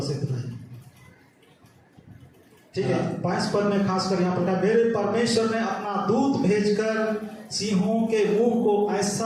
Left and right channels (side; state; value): both; identical; correlation 1.00